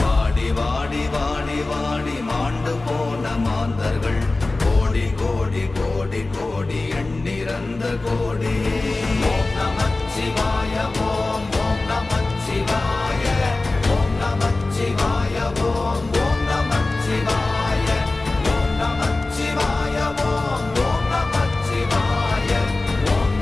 வாடி வாடி வாடி வாடி மாண்டு போன மாந்தர்கள் கோடி கோடி கோடி கோடி எண்ணிறந்த கோடி. ஓம் நமச்சிவாய ஓம் ஓம் நமச்சிவாய ஓம் நமச்சிவாய ஓம் ஓம் நமச்சிவாய ஓம் நமச்சிவாய ஓம் ஓம் நமச்சிவாய ஓம்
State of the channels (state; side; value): quieter; right; 3.2 dB